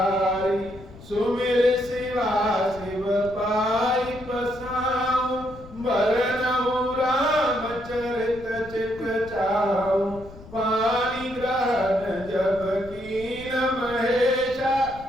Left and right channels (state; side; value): noise; left; rumble, 18 dB below the sound